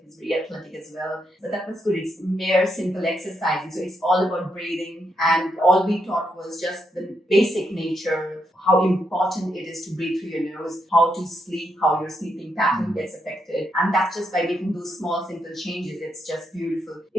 he's very athletic as well. So that was good. It's mere simple exercises. So it's all about breathing, and all we taught was just the basic nature, how important it is to breathe through your nose, how to sleep, how your sleeping pattern gets affected. And that's just by making those small, simple changes. It's just beautiful.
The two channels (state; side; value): normal; both; correlation 0.80